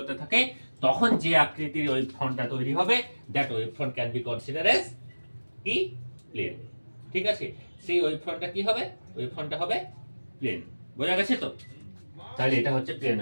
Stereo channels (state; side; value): inverted; both; correlation -1.00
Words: থাকে, তখন যে আকৃতির ওয়েভ ফ্রন্টটা তৈরি হবে, that wave front can be consider as কি প্লেন। ঠিক আছে, সেই ওয়েভ ফ্রন্টটা কি হবে? ওয়েভ ফ্রন্টটা হবে প্লেন। বোঝা গেছে তো? তাহলে এটা হচ্ছে প্লেন